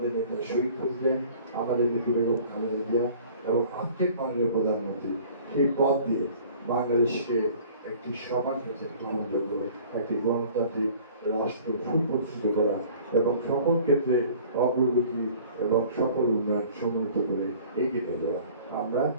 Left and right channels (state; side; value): inverted; both; correlation -0.49